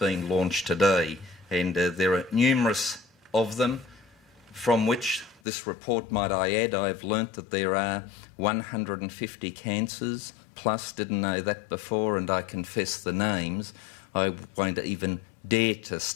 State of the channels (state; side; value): drops out; right; at 5.4 s